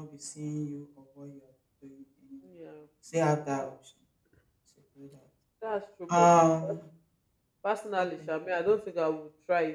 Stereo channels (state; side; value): identical; both; correlation 1.00